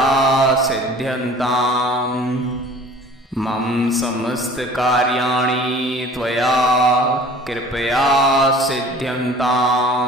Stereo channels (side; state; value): both; normal; correlation 0.47